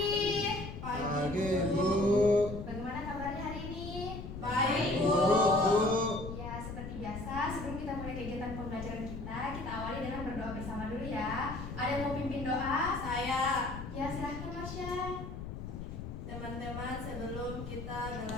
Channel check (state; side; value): noise; left; rumble, 8 dB below the sound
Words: Pagi, Bu. Bagaimana kabarnya hari ini? Baik, Bu. Ya, seperti biasa, sebelum kita mulai kegiatan pembelajaran kita awali dengan berdoa bersama dulu ya. Ada yang mau pimpin doa? Saya. Ya, silahkan Marsha. Teman-teman, sebelum kita